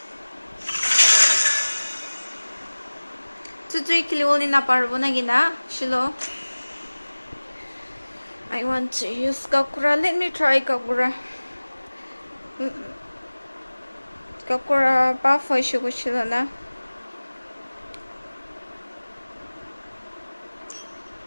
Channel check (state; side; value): inverted; both; correlation -1.00